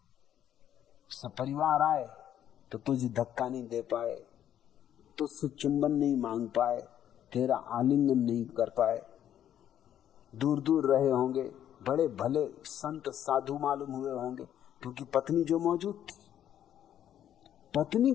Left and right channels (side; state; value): right; quieter; 10.6 dB